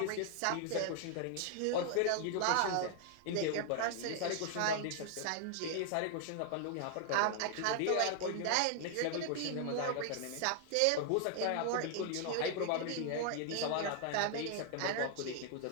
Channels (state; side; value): different; both; correlation 0.00